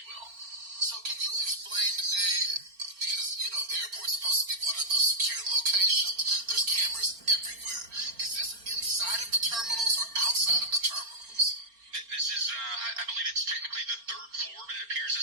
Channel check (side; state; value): left; late; 4.3 ms